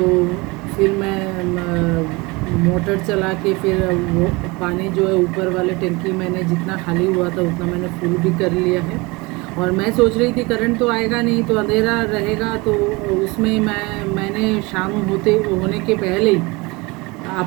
फिर मैं मोटर चला के फिर वो पानी जो है ऊपर वाले टंकी मैंने जितना खाली हुआ था उतना मैंने फुल भी कर लिया है। और मैं सोच रही थी करंट तो आएगा नहीं, तो अंधेरा रहेगा, तो उसमें मैंने शाम होने के पहले ही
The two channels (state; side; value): quieter; left; 24.9 dB